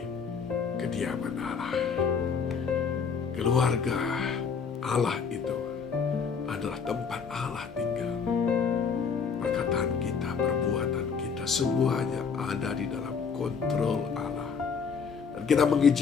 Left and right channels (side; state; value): right; quieter; 6.0 dB